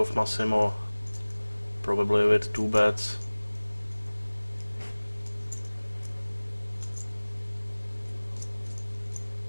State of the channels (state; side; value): inverted; both; correlation -1.00